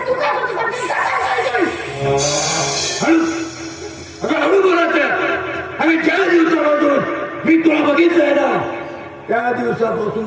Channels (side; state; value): both; identical; correlation 1.00